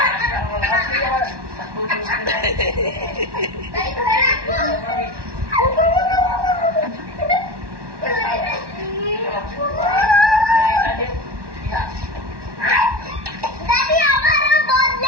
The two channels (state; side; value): late; left; 1.1 ms